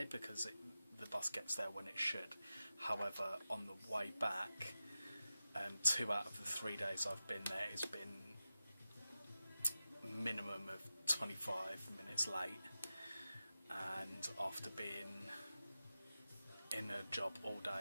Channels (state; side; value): inverted; both; correlation -0.93